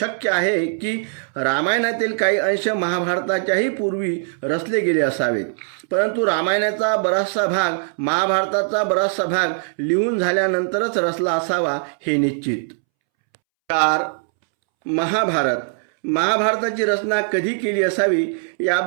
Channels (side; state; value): left; silent; 65 dB below the other